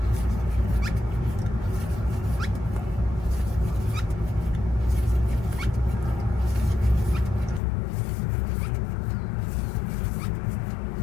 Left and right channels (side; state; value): right; drops out; at 7.6 s